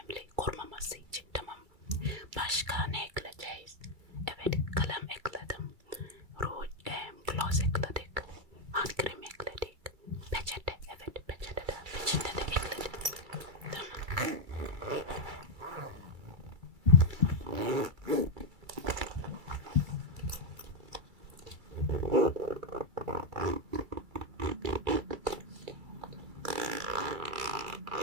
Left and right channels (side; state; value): left; late; 2.3 ms